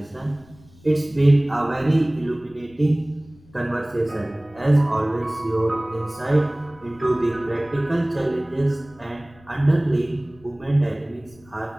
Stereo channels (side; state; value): left; noise; rumble, 26 dB below the sound